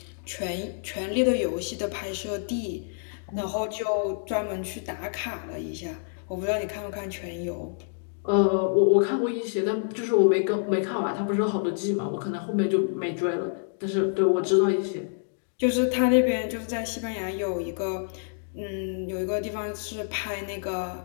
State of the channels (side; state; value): right; silent; digital silence